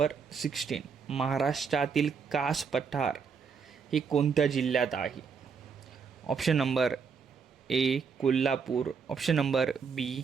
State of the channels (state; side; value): quieter; left; 5.9 dB